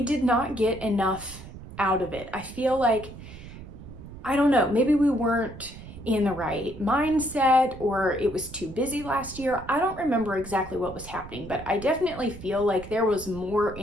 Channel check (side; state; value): right; noise; rumble, 14 dB below the sound